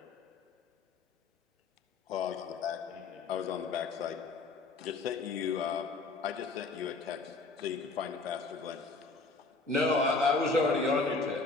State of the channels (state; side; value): quieter; right; 3.8 dB